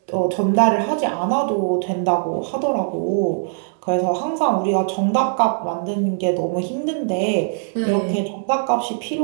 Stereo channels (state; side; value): silent; left; digital silence